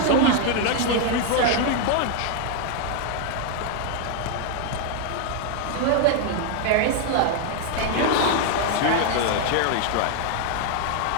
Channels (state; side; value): different; both; correlation 0.00